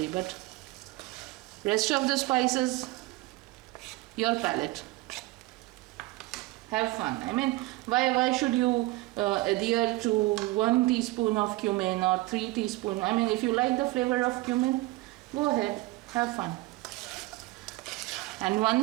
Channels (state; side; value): quieter; left; 20.2 dB